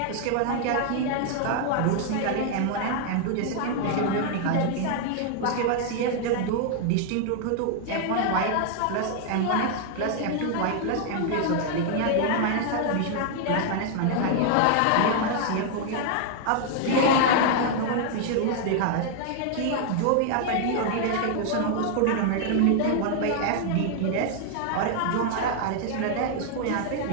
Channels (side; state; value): both; different; correlation 0.00